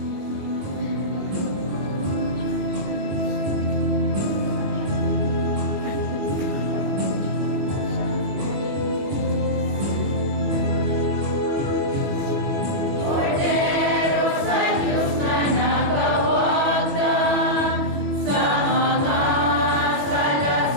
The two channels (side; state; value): left; late; 21 ms